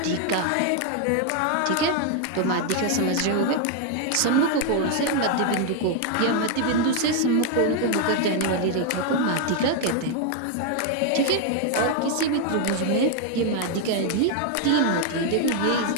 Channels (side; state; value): both; different; correlation 0.00